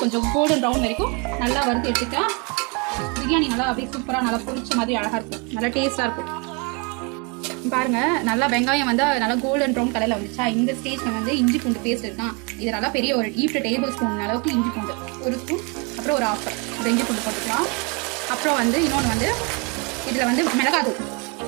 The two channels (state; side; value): quieter; left; 32.0 dB